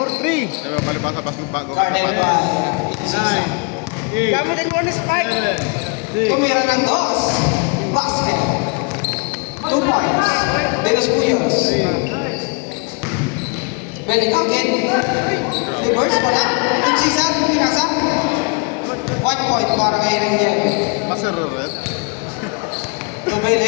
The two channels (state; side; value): quieter; right; 33.6 dB